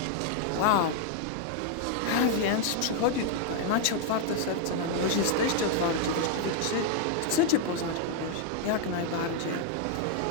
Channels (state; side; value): different; both; correlation 0.00